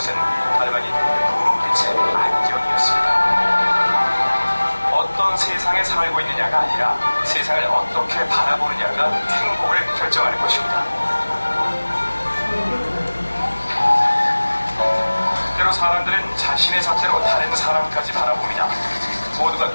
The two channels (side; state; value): both; inverted; correlation -1.00